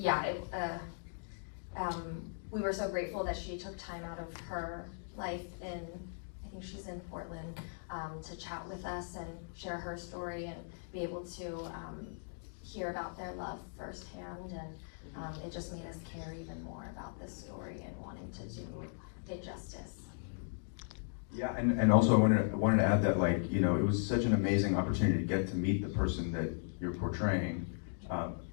we were so grateful that she took time out of her life I think she's in Portland, to chat with us and share her story and be able to hear about their love firsthand, and it just made us care even more about this story and wanting to do it justice. Yeah, and also I wanted to add that, it was such an amazing opportunity to get to meet the person that you're portraying. At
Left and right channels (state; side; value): silent; right; digital silence